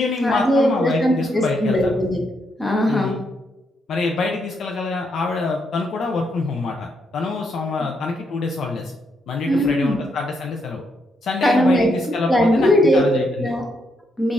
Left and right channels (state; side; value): normal; both; correlation 0.78